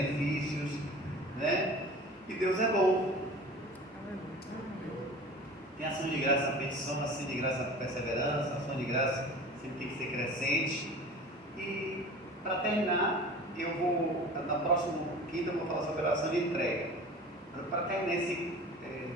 né? E Deus é bom. Tem ação de graça na petição, ação de graça na perseverança, ação de graça sempre tem que ser crescente. E para terminar, eu vou, na próxima quinta, eu vou falar sobre a oração de entrega. Para terminar esse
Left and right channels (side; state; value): both; normal; correlation 0.39